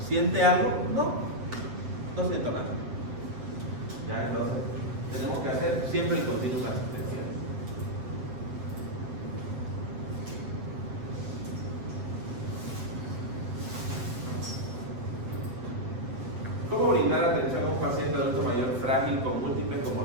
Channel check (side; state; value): left; late; 7.9 ms